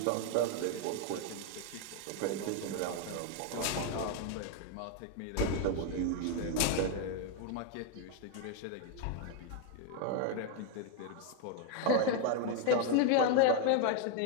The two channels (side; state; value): both; different; correlation 0.01